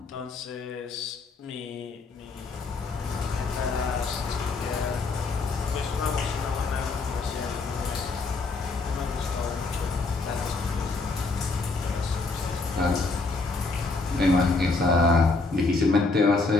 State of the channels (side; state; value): right; quieter; 3.7 dB